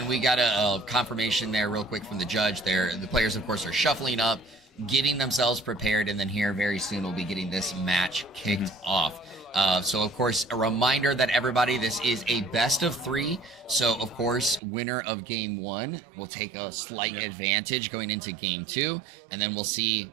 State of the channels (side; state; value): left; drops out; at 14.6 s